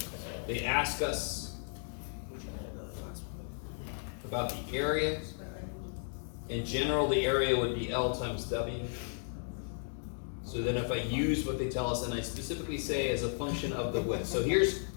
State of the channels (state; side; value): silent; right; digital silence